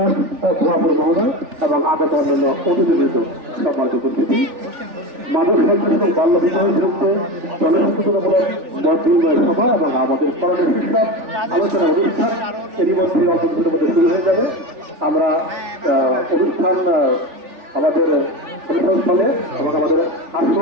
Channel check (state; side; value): late; left; 3.4 ms